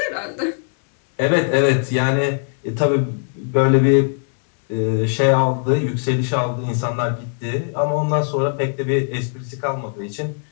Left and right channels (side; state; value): right; silent; digital silence